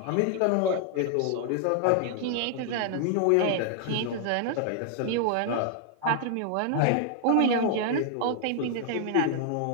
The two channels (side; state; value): both; different; correlation 0.00